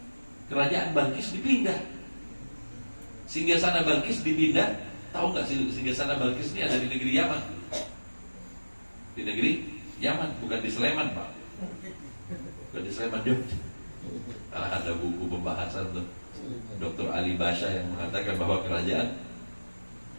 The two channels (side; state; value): both; inverted; correlation -1.00